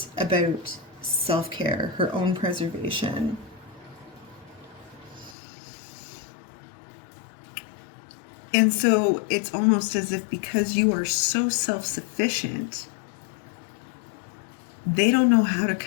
about self-care, her own preservation. And so it's almost as if because you are so self-sufficient, they don't know how to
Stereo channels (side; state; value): right; drops out; at 5.4 s